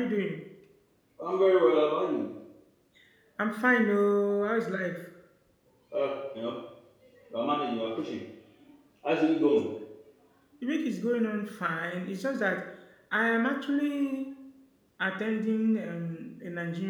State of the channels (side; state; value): both; identical; correlation 1.00